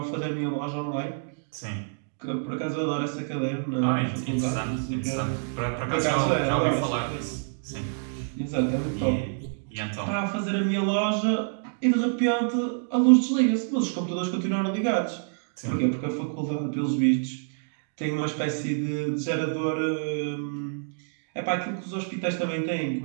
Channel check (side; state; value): left; silent; digital silence